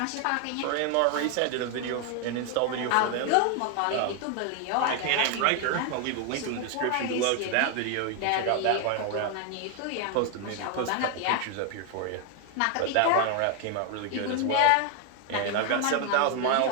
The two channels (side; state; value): both; different; correlation 0.01